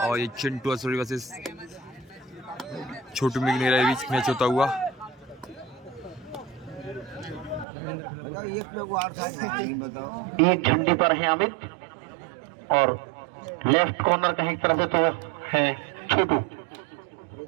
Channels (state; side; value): drops out; left; at 7.7 s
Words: ये चिंटू असुरी वर्सेस छोटू मिगनेरा के बीच मैच होता हुआ। एक झंडे पर है अमित और लेफ्ट कॉर्नर का एक तरह से तो है छोटू।